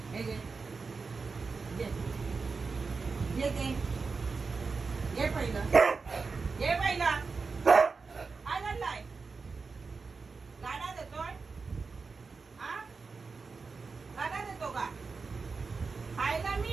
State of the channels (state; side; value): quieter; left; 4.6 dB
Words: हे घे. घे. घे घे. घे पहिलं. घे पहिलं. काय घडलाय? गाडा देतोय? हा? गाडा देतो का? खायला